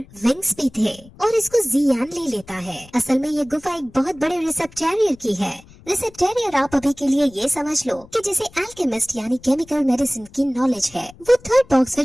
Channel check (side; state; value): left; noise; rumble, 24 dB below the sound